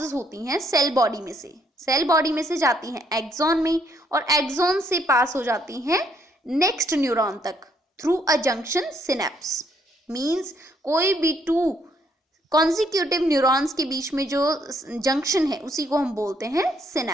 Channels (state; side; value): normal; both; correlation 0.70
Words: होती हैं सेल बॉडी में से, सेल बॉडी में से जाती हैं एक्सॉन में, और एक्सॉन से पास हो जाती हैं नेक्स्ट न्यूरॉन तक through a junction synapse. Means कोई भी 2 कॉन्जिक्यूटिव न्यूरॉन्स के बीच में जो जंक्शन है उसी को हम बोलते हैं